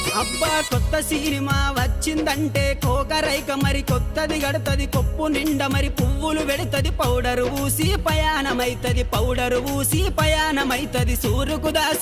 అబ్బా కొత్త సినిమా వచ్చిందంటే కోకరైక మరి కొత్తది గడతది కొప్పు నిండా మరి పువ్వులు పెడతది పౌడరు ఊసి పయానమైతది పౌడరు ఊసి పయానమైతది సూరుకు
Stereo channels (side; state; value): both; identical; correlation 1.00